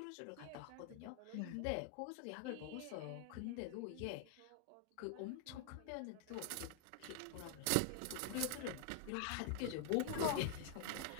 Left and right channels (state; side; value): different; both; correlation 0.00